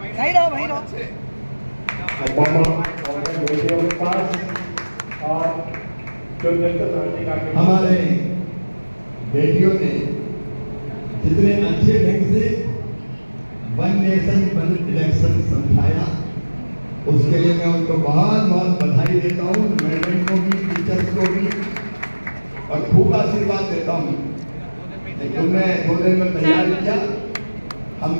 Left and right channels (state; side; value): inverted; both; correlation -1.00